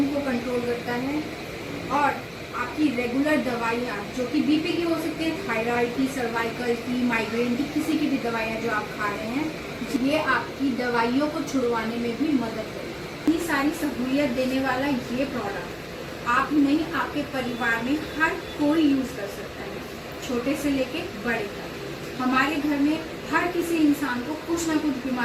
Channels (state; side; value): identical; both; correlation 1.00